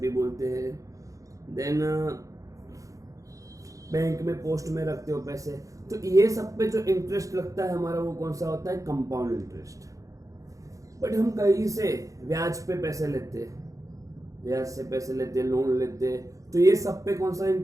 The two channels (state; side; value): late; left; 0.16 ms